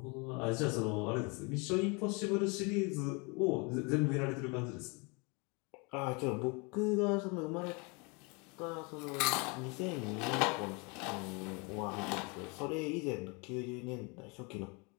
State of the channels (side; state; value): right; quieter; 30.5 dB